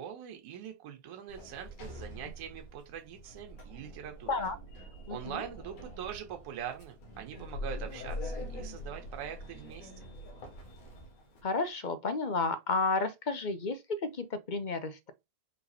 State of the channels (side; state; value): right; late; 2.2 ms